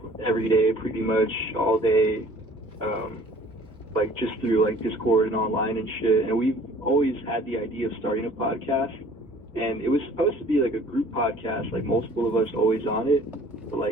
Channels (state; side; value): normal; both; correlation 0.52